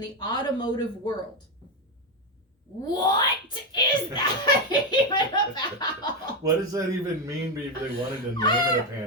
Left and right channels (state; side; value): normal; both; correlation 0.10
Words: the Automotive World. What is that even about? What does that even mean if they wanted to name it a